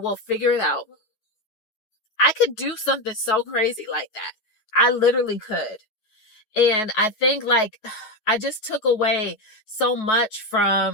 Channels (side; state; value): right; late; 9.2 ms